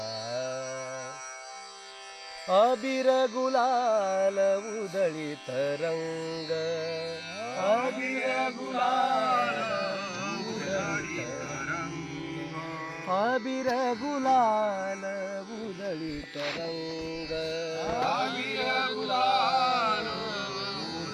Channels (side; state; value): both; identical; correlation 1.00